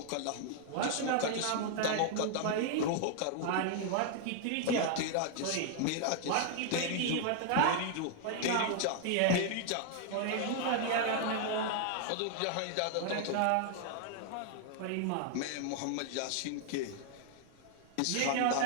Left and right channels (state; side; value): different; both; correlation 0.00